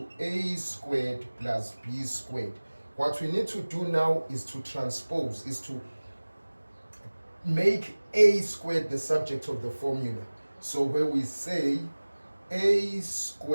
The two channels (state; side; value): inverted; both; correlation -1.00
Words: A squared plus B squared. What we need to do now is to transpose, is to make A squared the subject of the formula. So where we say A